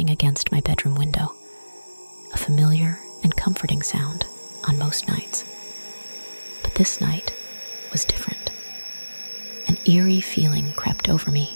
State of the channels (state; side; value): inverted; both; correlation -1.00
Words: against my bedroom window, a familiar and comforting sound on most nights. But this night was different. An eerie feeling crept over me